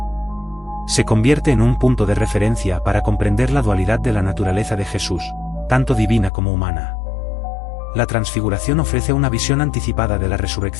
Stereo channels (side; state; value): right; drops out; at 6.3 s